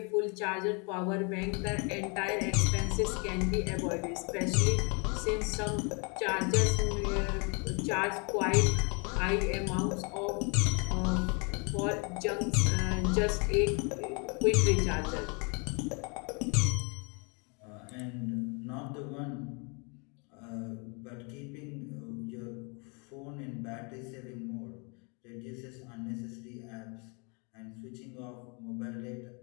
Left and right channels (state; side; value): quieter; right; 33.6 dB